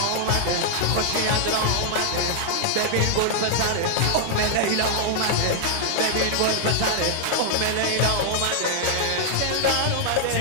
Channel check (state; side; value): different; both; correlation -0.01